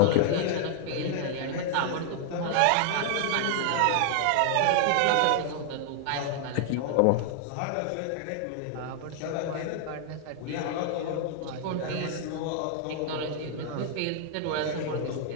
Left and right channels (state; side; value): different; both; correlation 0.00